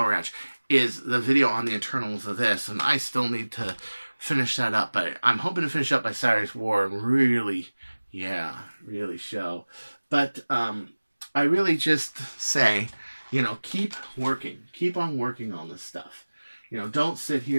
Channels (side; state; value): both; inverted; correlation -1.00